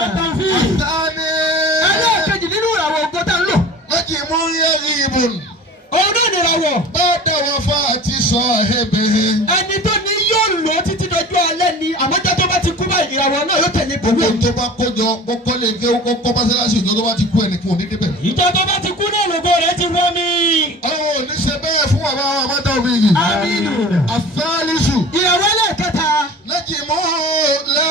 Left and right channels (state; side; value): normal; both; correlation 0.39